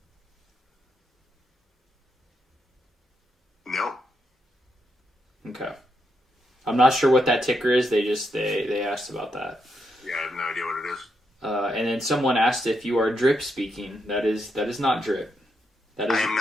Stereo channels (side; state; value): both; normal; correlation 0.81